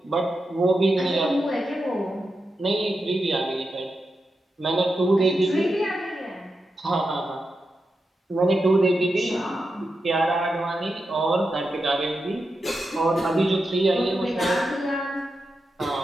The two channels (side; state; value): both; normal; correlation 0.88